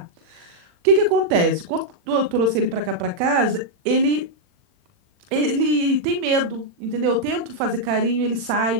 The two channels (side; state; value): left; late; 40 ms